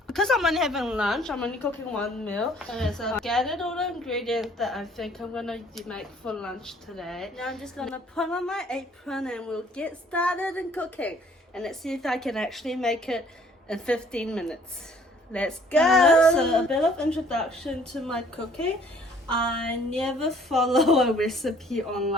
Because I'm only having lunch, I'm only cooking one meal. Okay, so I gathered all the ingredients that I think I'm gonna make for lunch today. Now I'm just gonna put on my apron and we'll get started in cooking. And let's see if I can actually make it in 15 minutes. Let's go! So a bit of introduction to my cooking. I never follow a recipe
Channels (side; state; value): both; normal; correlation 0.58